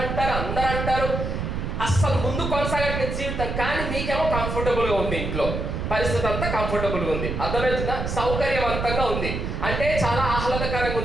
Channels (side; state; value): right; noise; rumble, 3 dB below the sound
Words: అంటారు, అందరు అంటారు. అస్సలు ముందు కొనసాగట్లేదు జీవితం, కానీ మీకేమో కంఫర్టబుల్గా ఉంది, ఇంట్లో పరిస్థితి అంతా కంఫర్టబుల్గా ఉంది, అర్థమవుతుందా? సౌకర్యవంతంగా ఉంది, అంటే చాలా ఆహ్లాదకరంగా